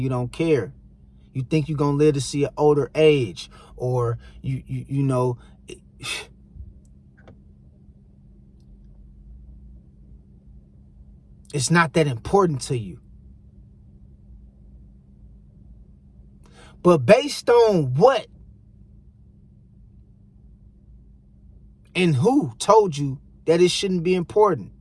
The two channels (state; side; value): identical; both; correlation 1.00